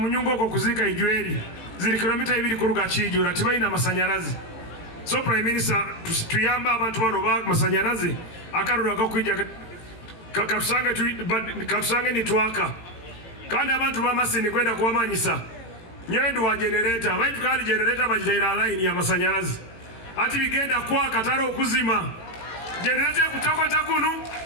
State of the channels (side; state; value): right; late; 18 ms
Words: oko kuzika ijweri zili kilomita 2 kuruga Kijura tibaina amasanyarazi. So Prime Minister tuyamba abantu bano ba masanyarazi akarura gakwija katusange nitwaka kandi abantu ba Masindi kwenda kuwamanyisa nyendu wa generator baitu kandi generator bajitaira line ya masanyarazi ati bigenda kwa kataro okuzima generator kutokota kunu